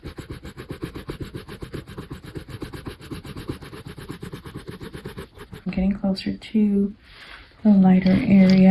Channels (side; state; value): both; identical; correlation 1.00